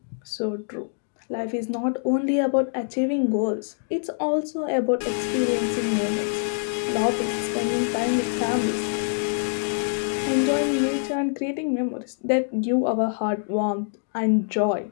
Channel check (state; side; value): silent; right; digital silence